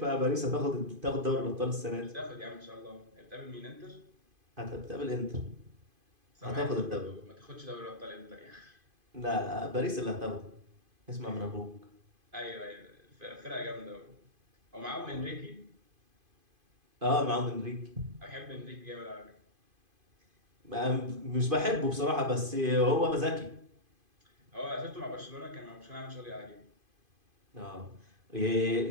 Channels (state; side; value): late; left; 2.5 ms